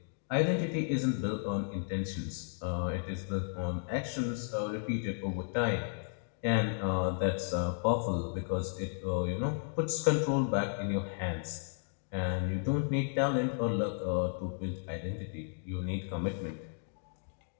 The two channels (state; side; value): silent; right; digital silence